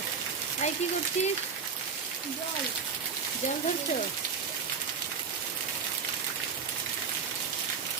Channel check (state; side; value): quieter; left; 5.9 dB